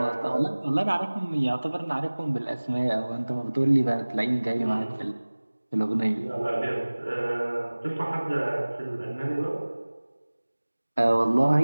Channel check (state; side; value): inverted; both; correlation -1.00